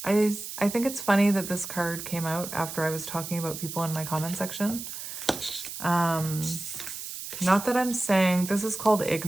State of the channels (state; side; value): noise; right; hiss, 9 dB below the sound